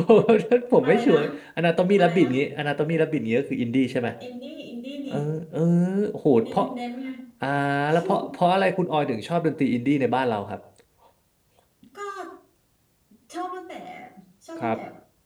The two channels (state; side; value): identical; both; correlation 1.00